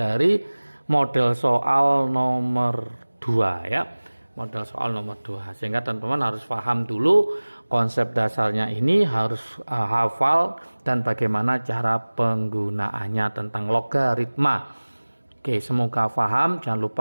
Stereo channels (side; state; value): both; inverted; correlation -1.00